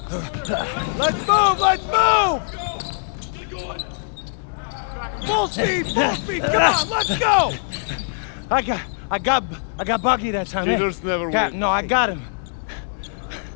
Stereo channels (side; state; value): right; silent; digital silence